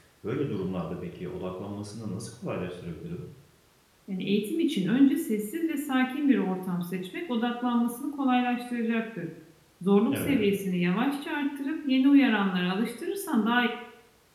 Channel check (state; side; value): identical; both; correlation 1.00